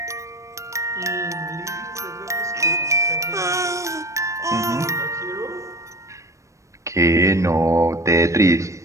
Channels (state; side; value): late; left; 0.15 ms